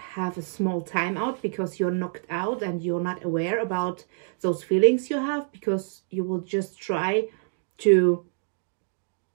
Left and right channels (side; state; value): left; silent; digital silence